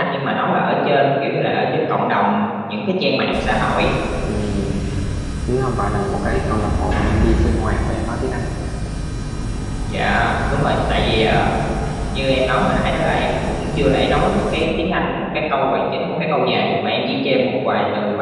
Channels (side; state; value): both; identical; correlation 1.00